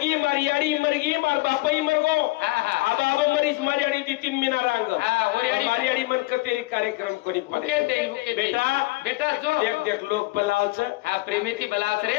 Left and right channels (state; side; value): quieter; right; 21.8 dB